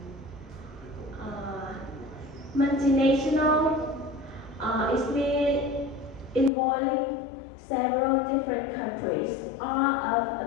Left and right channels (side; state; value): right; drops out; at 6.5 s